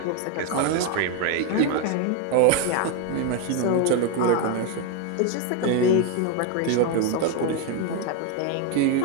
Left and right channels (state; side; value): different; both; correlation 0.02